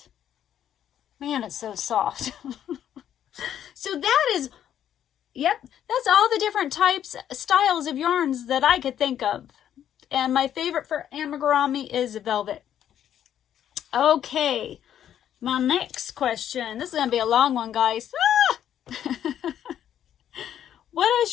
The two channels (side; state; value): right; quieter; 10.3 dB